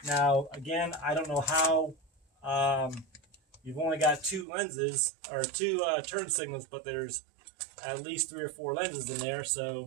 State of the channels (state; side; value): drops out; left; at 4.5 s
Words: Now, again, I don't know how you've only got two lenses, or two turn signals, but there's at least 3 or 4 lenses in there.